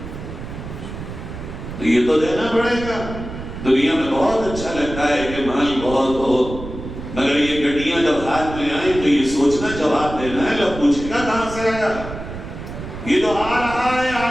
تو یہ تو دینا پڑے گا۔ دنیا میں بہت اچھا لگتا ہے کہ مال بہت ہو، مگر یہ گڈیاں جب ہاتھ میں آئیں تو یہ سوچنا جواب دینا ہے، لوگ پوچھے گا کہاں سے آیا؟ یہ تو آ رہا ہے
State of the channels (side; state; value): right; noise; rumble, 10 dB below the sound